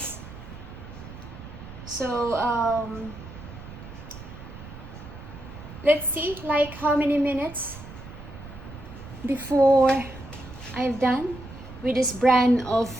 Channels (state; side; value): noise; right; rumble, 14 dB below the sound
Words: So let's see like how many minutes before I've done with this brand of